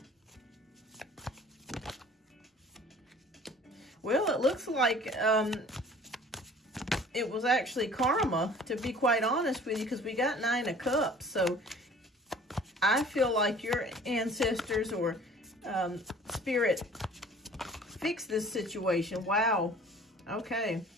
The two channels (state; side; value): normal; both; correlation 0.49